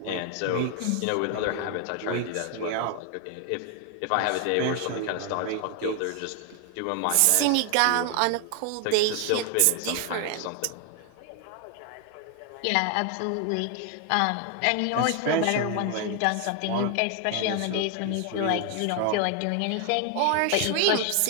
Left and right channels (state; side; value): different; both; correlation 0.00